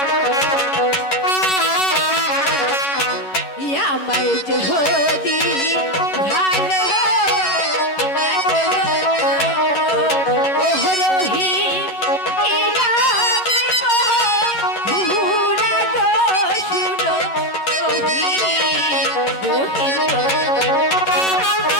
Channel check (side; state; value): right; late; 11 ms